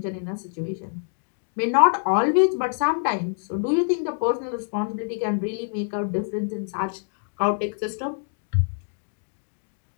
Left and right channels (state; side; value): silent; right; digital silence